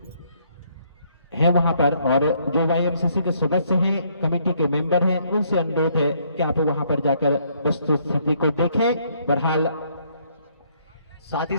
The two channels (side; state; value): both; inverted; correlation -0.68